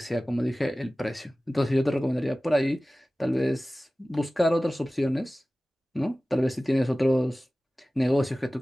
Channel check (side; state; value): both; normal; correlation 0.97